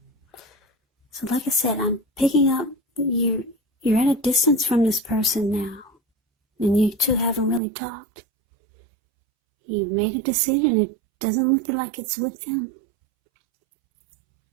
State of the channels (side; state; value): left; drops out; at 7.6 s